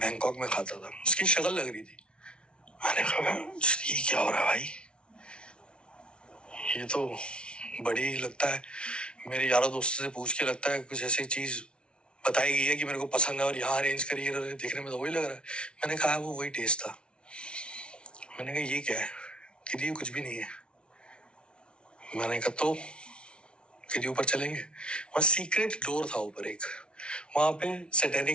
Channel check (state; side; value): late; right; 0.057 ms